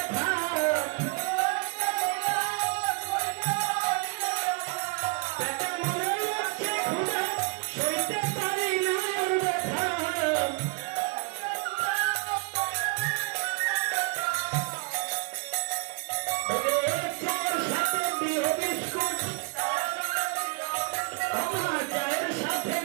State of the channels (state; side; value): quieter; left; 33.3 dB